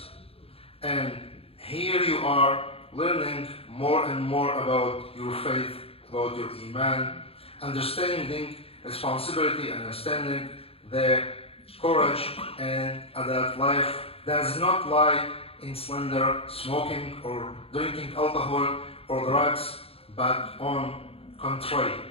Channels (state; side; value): late; right; 0.28 ms